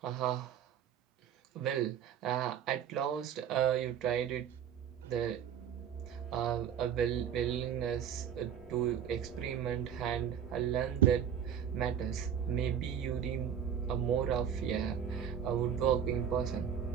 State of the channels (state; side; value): quieter; left; 8.6 dB